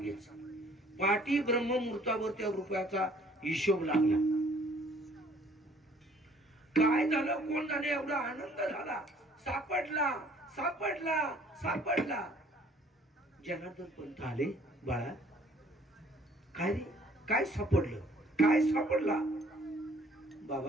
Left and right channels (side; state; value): both; normal; correlation 0.58